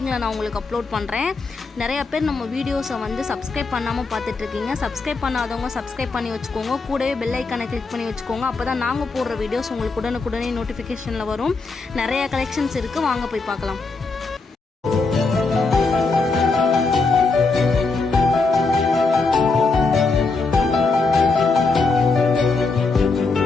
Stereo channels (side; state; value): right; quieter; 3.9 dB